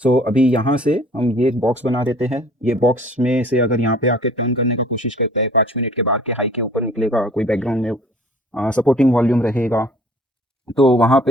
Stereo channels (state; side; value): normal; both; correlation 0.52